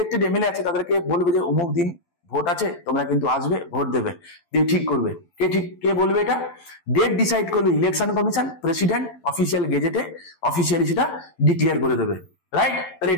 এমএলএ আছে, তাদেরকে বলবে যে অমুক দিন ভোট আছে, তোমরা কিন্তু আসবে, ভোট দেবে। দিয়ে ঠিক করবে কে বলবে এটা? ডেট ডিসাইড করবে ইলেকশন কমিশন, প্রেসিডেন্ট অফিসিয়াল গেজেটে অফিসিয়ালি সেটা ডিক্লেয়ার করে দেবে, রাইট? তাহলে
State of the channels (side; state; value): right; late; 12 ms